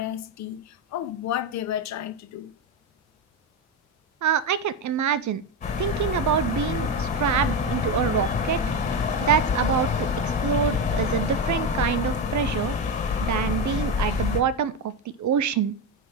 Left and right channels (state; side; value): normal; both; correlation 0.13